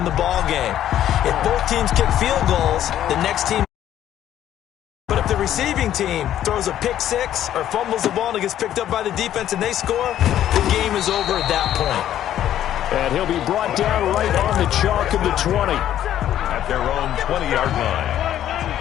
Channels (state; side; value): quieter; right; 11.5 dB